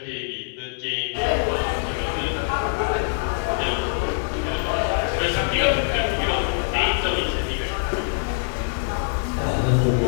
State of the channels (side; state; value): right; silent; digital silence